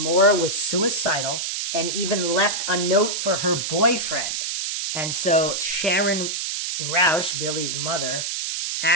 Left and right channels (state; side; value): noise; right; hiss, 2 dB below the sound